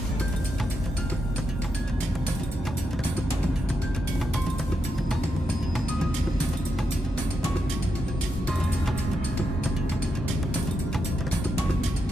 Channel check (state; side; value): normal; both; correlation 0.84